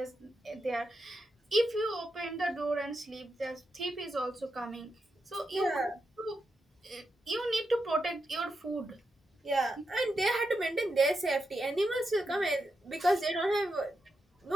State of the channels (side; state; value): both; normal; correlation 0.86